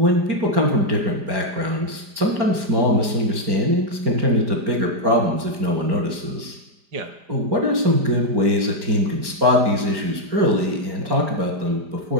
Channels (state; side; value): late; left; 5.0 ms